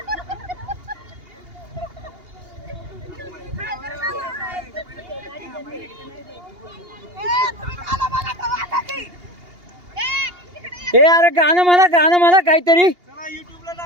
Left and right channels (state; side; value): late; left; 2.8 ms